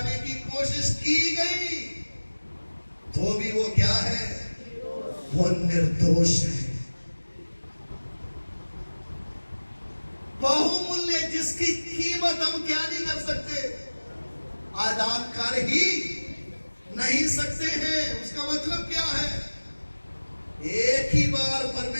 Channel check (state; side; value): inverted; both; correlation -1.00